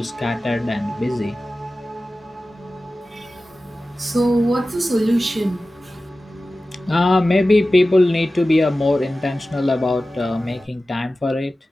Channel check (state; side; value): normal; both; correlation 0.95